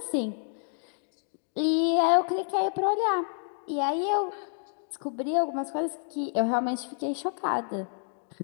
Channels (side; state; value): right; silent; digital silence